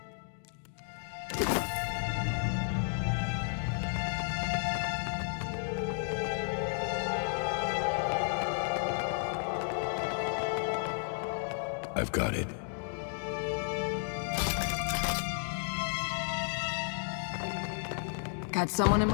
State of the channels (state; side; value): silent; right; 56 dB below the other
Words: I've got it. Got someone in